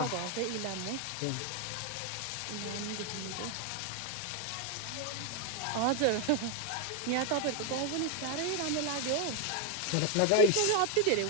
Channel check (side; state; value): both; different; correlation 0.01